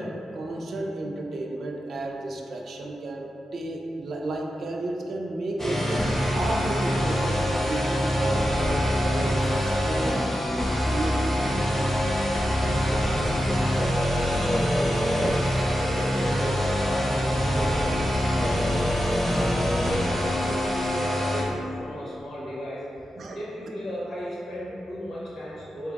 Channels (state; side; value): normal; both; correlation 0.90